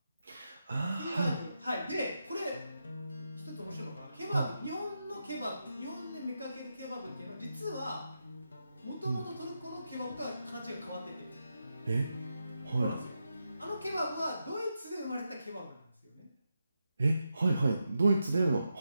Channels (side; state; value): both; inverted; correlation -0.87